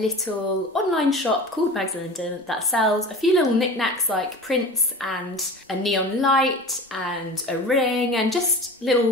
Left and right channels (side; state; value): both; normal; correlation 0.35